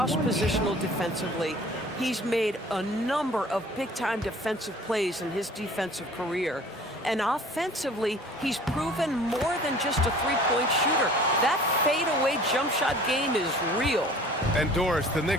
defensively. He's made a number of big-time defensive plays in his defensive career. And offensively, he's proven more than just a three-point shooter. That fadeaway jump shot game is real. And Doris, the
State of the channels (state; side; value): normal; both; correlation 0.48